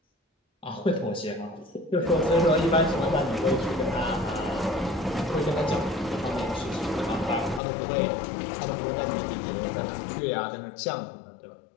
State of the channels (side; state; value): right; drops out; at 7.6 s